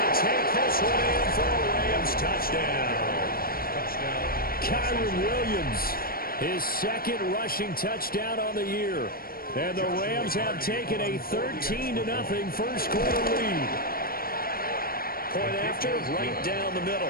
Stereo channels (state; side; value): late; right; 0.43 ms